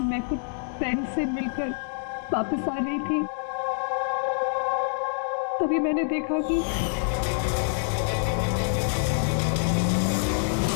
मैं कुछ फ्रेंड से मिलकर वापस आ रही थी, तभी मैंने देखा कि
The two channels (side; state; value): right; silent; digital silence